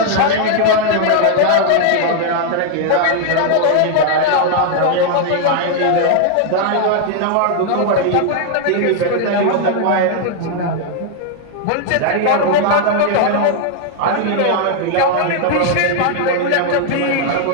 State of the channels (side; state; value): both; different; correlation 0.00